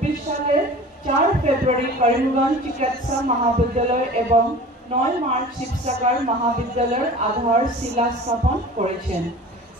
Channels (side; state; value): both; normal; correlation 0.40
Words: সালের 4 ফেব্রুয়ারি করিমগঞ্জ চিকিৎসা মহাবিদ্যালয় এবং 9 মার্চ শিবসাগর মহাবিদ্যালয়ের আধারশিলা স্থাপন করেছেন।